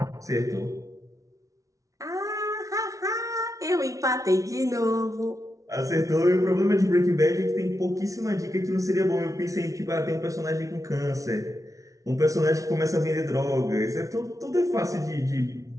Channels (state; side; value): late; left; 0.17 ms